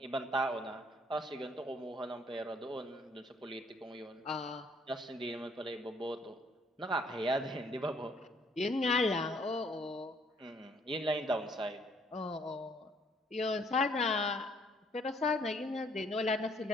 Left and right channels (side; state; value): both; normal; correlation 0.64